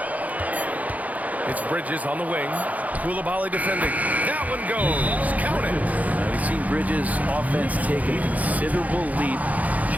It's Bridges on the wing. Koulibaly defending. That one goes. Count it. We've seen Bridges' offense take a considerable leap,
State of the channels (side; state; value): left; late; 0.075 ms